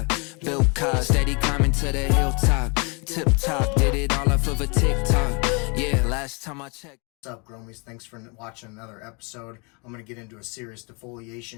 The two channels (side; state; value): right; quieter; 32.1 dB